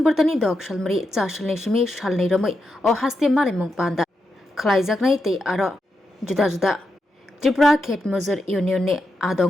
तनि दक सालमरि चासलनि सिमि सालनै रमै अ हस्ते मालेमुंग पांदा खलाइजाकनाय तै आरो जुदा जुदा त्रिपुरा खेत मजूर यूनियन ने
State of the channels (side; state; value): both; normal; correlation 0.85